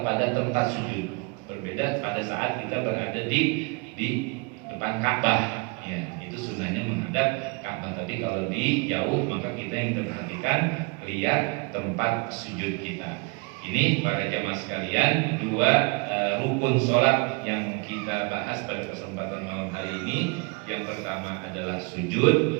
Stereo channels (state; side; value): quieter; left; 30.6 dB